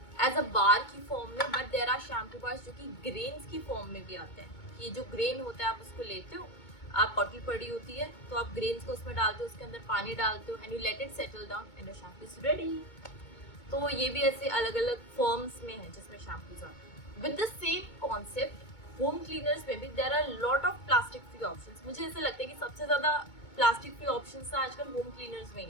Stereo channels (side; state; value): right; late; 2.2 ms